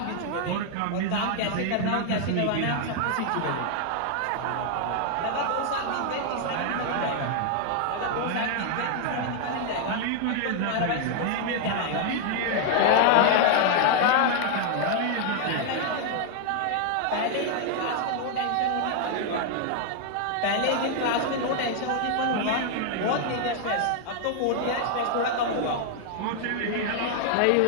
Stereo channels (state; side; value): different; both; correlation 0.00